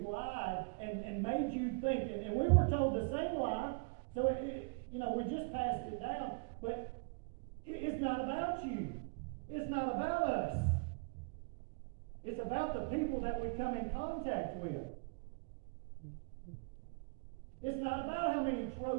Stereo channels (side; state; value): left; quieter; 33.0 dB